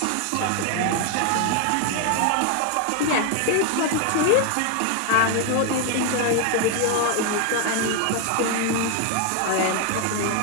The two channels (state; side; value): different; both; correlation 0.01